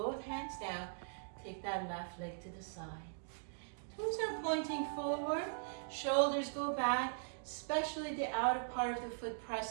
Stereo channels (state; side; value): silent; left; digital silence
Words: hands down. Take that left leg to the side. Toes are pointing forward. Shoulders go back. Especially the outer part of the foot,